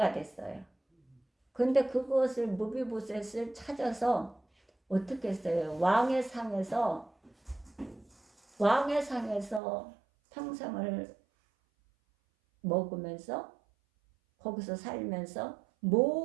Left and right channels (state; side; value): drops out; left; at 9.6 s